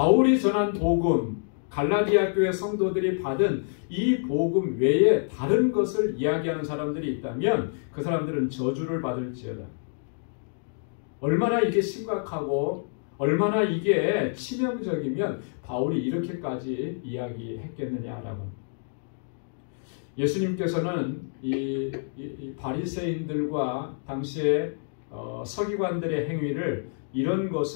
전한 복음, 갈라디아 교회 성도들이 받은 이 복음 외에 다른 것을 이야기하는 사람들이 있다면 그 사람들은 저주를 받을지어다. 얼마나 이게 심각하고 얼마나 이게 치명적이면 바울이 이렇게까지 이야기했겠느냐라고. 예수님께서는 이 바리새인들과 당시의 서기관들의 행위를 이런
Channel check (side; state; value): right; silent; digital silence